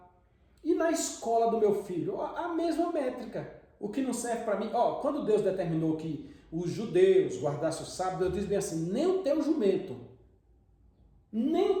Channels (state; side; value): identical; both; correlation 1.00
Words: E na escola do meu filho, a mesma métrica. O que não serve para mim, quando Deus determinou que os judeus guardassem o sábado, Deus diz bem assim, nem o teu jumento